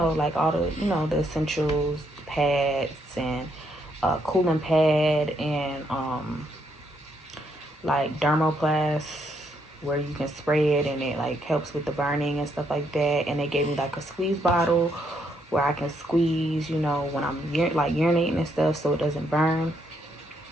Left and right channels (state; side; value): normal; both; correlation 0.75